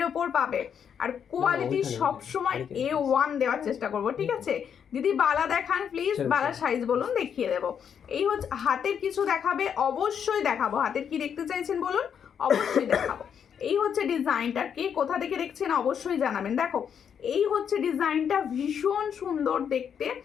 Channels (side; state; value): right; quieter; 7.8 dB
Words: ওপর পাবে, আর কোয়ালিটি সবসময় A1 দেওয়ার চেষ্টা করবো, ঠিক আছে? দিদি বালা দেখান প্লিজ, বালা সাইজ বলুন, দেখিয়ে দেবো। এই হচ্ছে হাতের কিছু দেখাবে, অবশ্যই দেখাবো। হাতের কি দেখতে চাইছেন বলুন, অবশ্যই দেখাবো। এই হচ্ছে ডিজাইনটা, কে কোথা থেকে দেখছেন অবশ্যই জানাবেন। দেখো এই হচ্ছে ডিজাইনটা, ভীষণ সুন্দর দেখতে,